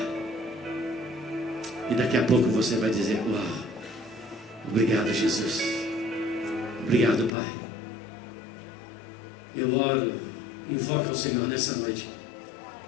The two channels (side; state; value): right; drops out; at 7.4 s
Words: E daqui a pouco você vai dizer: uau, obrigado, Jesus, obrigado, Pai. Eu oro, invoco ao Senhor nessa noite,